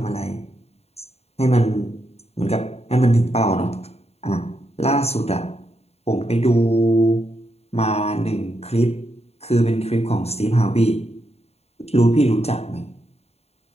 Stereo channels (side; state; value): right; late; 0.30 ms